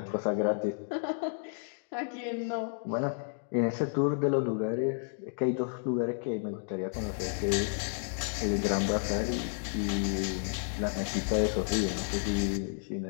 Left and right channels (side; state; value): right; silent; digital silence